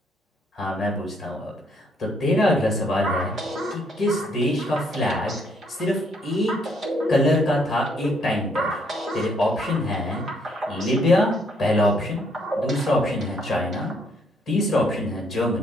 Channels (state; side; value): normal; both; correlation 0.69